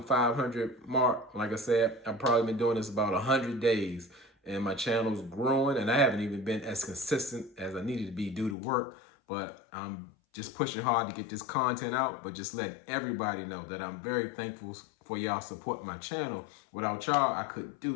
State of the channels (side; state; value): right; drops out; at 8.6 s